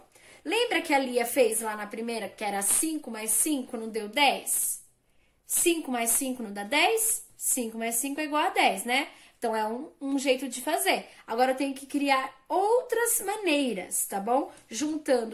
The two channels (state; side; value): identical; both; correlation 1.00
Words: Lembra que a Lia fez lá na primeira, que era 5 mais 5 não deu 10? 5 mais 5 não dá 10? 5 mais 5 é igual a 10, né? Então, é um jeito de fazer. Agora, eu tenho que criar outras maneiras, tá bom?